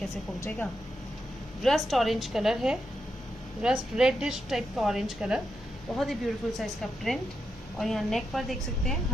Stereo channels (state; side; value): normal; both; correlation 0.85